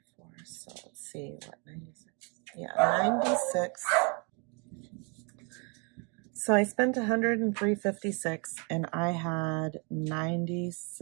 So let's see what 96. Yeah, 96. So I spent 103.56 and I had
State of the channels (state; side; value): quieter; left; 34.4 dB